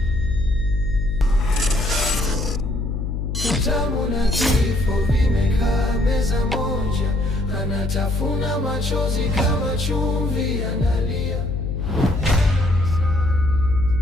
Utamu na kifo vimekaa meza moja, anatafuna machozi kama chumvi analia.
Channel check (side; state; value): left; noise; hum, 2 dB below the sound